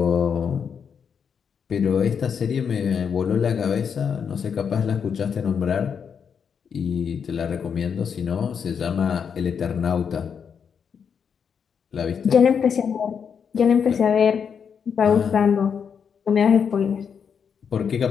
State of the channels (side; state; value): right; quieter; 6.9 dB